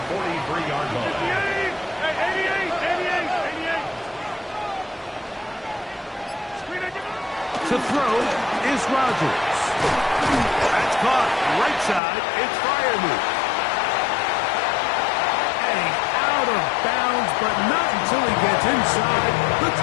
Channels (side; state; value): right; drops out; at 12.0 s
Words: To throw is Rodgers. That's caught. Right side, it's Freiermuth. And out of bounds, but not until he gets inside the